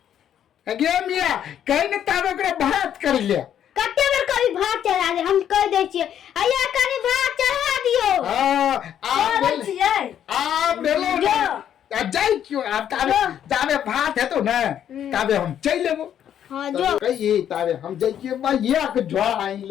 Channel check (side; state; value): right; quieter; 9.9 dB